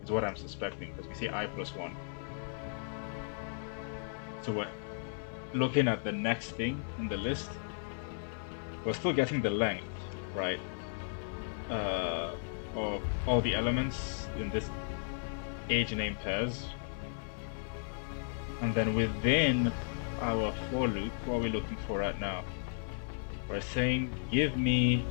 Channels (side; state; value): right; silent; 54 dB below the other